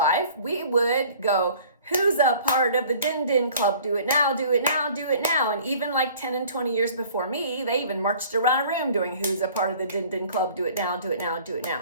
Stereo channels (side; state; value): both; inverted; correlation -0.51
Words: we would go, who's a part of the Din Din Club? Do it now, do it now, do it now. And even like 10 and 20 years before me, they even marched around a room doing who's a part of the Din Din Club? Do it now, do it now, do it now.